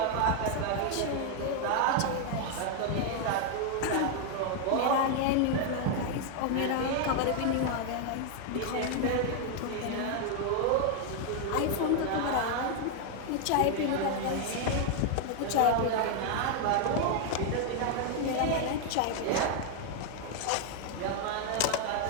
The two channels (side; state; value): both; different; correlation 0.00